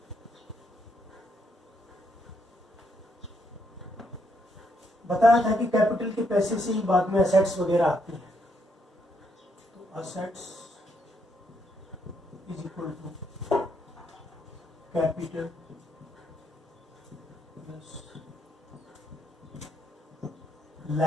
बताया था कि कैपिटल के पैसे से ही बाद में असेट्स वगैरह आती है। तो assets is equal to capital plus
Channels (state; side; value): normal; both; correlation 0.75